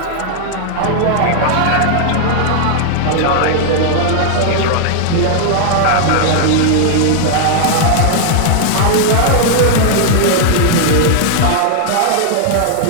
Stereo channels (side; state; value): both; different; correlation -0.01